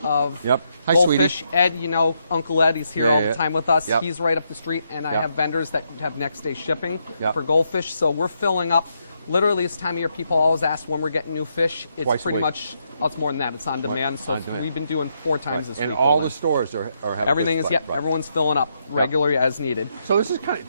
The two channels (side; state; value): both; inverted; correlation -0.78